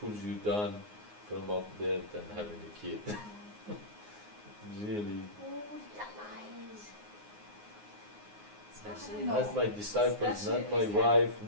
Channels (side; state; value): left; late; 9.6 ms